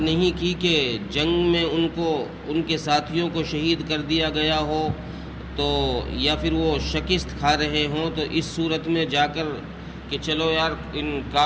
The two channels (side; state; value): both; identical; correlation 1.00